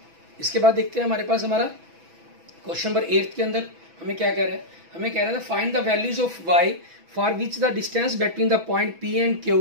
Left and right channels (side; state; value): left; late; 6.1 ms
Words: इसके बाद देखते हैं हमारे पास हमारा क्वेश्चन नंबर 8 के अंदर हमें क्या कह रहा है, हमें कह रहा था find the values of y for which the distance between the point P and